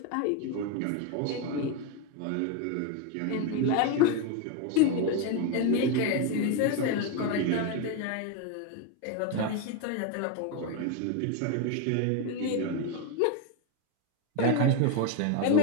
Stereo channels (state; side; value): different; both; correlation 0.02